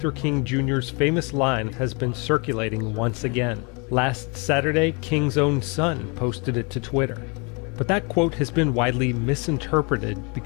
King Jr.'s famous line has been circulating once again. Last Saturday, King's own son posted it to Twitter. But that quote has been widely misinterpreted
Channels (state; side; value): quieter; right; 32.5 dB